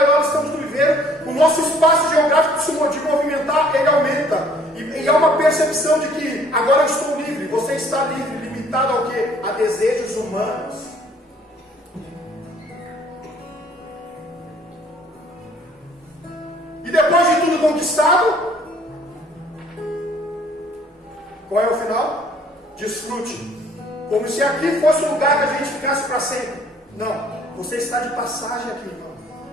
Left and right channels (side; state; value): both; normal; correlation 0.58